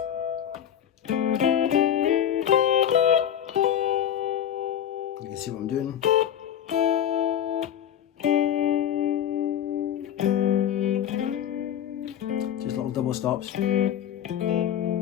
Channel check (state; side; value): quieter; right; 9.9 dB